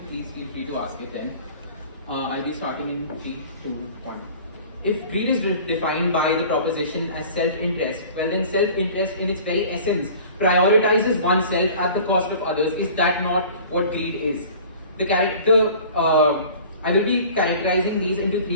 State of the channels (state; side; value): inverted; both; correlation -0.44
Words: Please feel free to ask it then. I'll be starting in 3, 2, 1. If greed is defined by the proposition as self-interest, well then self-interest in its very essence prioritizes oneself at the cost of others. Is that not what greed is? I will be characterizing these into